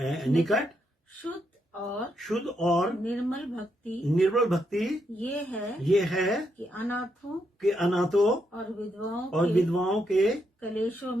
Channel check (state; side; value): normal; both; correlation 0.79